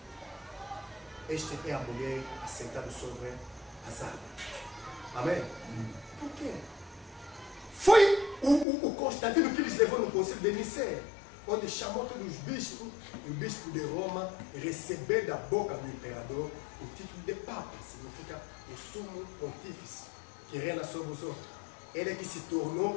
Esta é a mulher assentada sobre as águas. Amém? Por quê? Foi o Constantino que lhes levou no concílio de Nicéia, onde chamou todos os bispos, e o bispo de Roma recebeu da boca do imperador o título de Papa, significa o sumo pontífice, que reina sobre os outros. Ele é que se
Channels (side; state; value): right; drops out; at 8.7 s